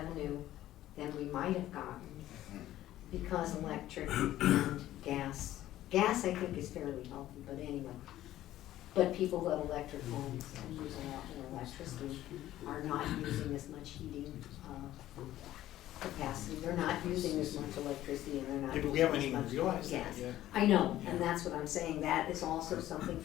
than we might have gotten because electric and gas. Gas, I think, is fairly healthy, but anyway. But people who have electric homes and use a lot more electricity are not using as much heating capacity. They're not using as much electricity, and they're not Yeah, but we using haven't as even much realized gas. that yet. I know, and that's what I'm saying. That is also something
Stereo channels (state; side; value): quieter; right; 13.9 dB